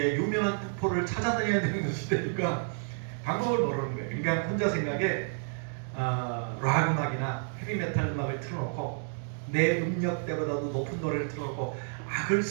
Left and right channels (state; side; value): silent; left; 58 dB below the other